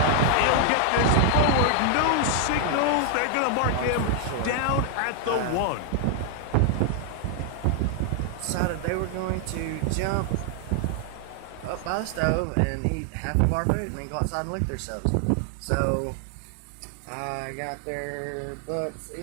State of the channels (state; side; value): different; both; correlation 0.00